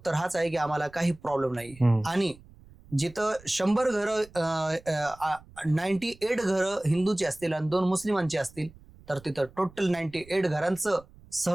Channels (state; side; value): noise; right; rumble, 23 dB below the sound